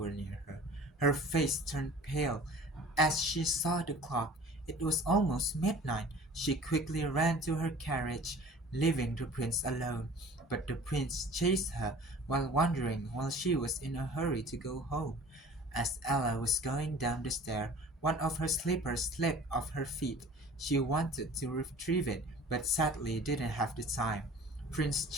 near her. Her face turned pale as she saw the clock. It was almost midnight. She quickly ran to her carriage, leaving the prince alone. But the prince chased her while she was in a hurry to go home. As Ella was going down the stair, one of her slippers slipped off her feet. She wanted to retrieve it, but sadly didn't have the time. Prince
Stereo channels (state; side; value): normal; both; correlation 0.46